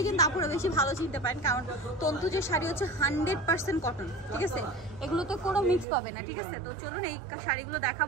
কিন্তু আপনারা বেশি ভালো চিনতে পারেন, কারণ তন্তুজের শাড়ি হচ্ছে 100% কটন, ঠিক আছে? এগুলো তো কোনো মিক্স পাবে না, ঠিক আছে? তো চলুন এই শাড়িগুলো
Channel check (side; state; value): left; drops out; at 5.9 s